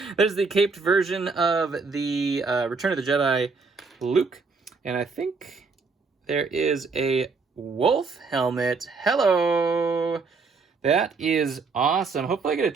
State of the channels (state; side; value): quieter; left; 4.5 dB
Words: There's the caped version of the Return of the Jedi Luke. And I think there is a wolf helmet. Hello! That is awesome. Hopefully I get a